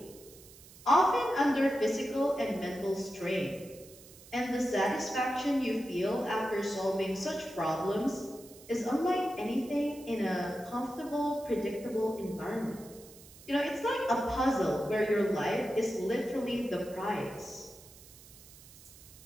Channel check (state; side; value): noise; right; hiss, 20 dB below the sound